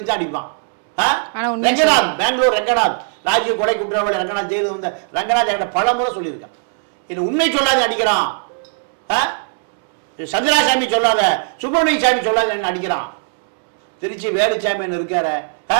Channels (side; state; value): left; silent; digital silence